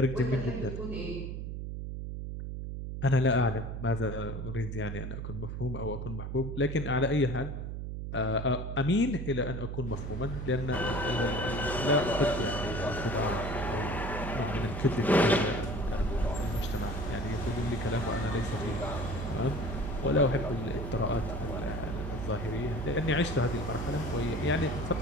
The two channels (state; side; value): noise; right; hum, 5 dB below the sound